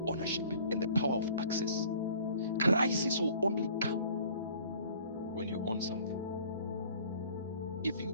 ownership and the power of access. Crisis will only come when you own something. If you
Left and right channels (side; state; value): both; inverted; correlation -0.51